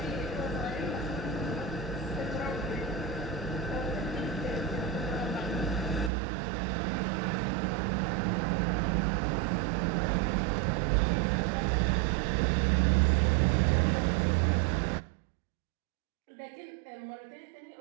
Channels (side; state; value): left; drops out; at 6.1 s